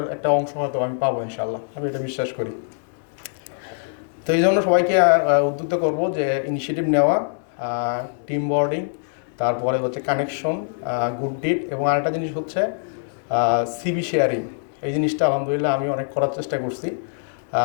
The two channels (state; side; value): silent; right; digital silence